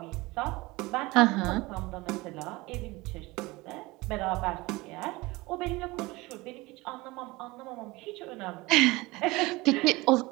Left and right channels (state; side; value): quieter; left; 21.9 dB